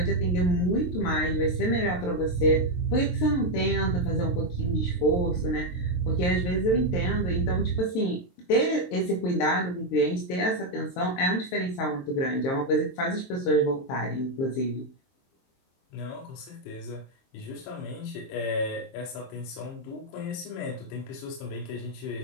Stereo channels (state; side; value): late; right; 23 ms